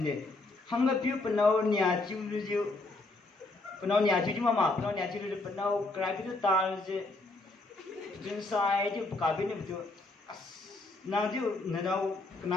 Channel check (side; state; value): right; quieter; 3.1 dB